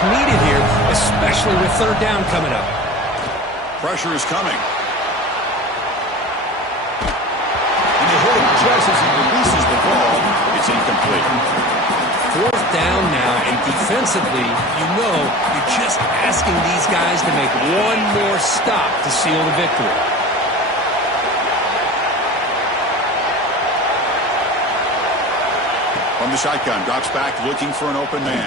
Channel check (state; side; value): normal; both; correlation 0.35